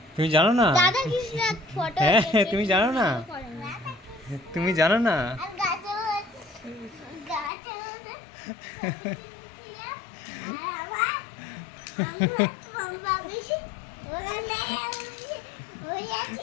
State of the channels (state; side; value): drops out; right; at 7.5 s